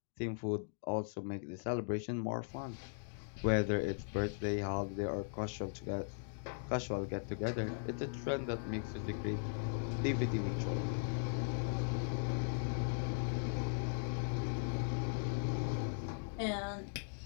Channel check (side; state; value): right; silent; digital silence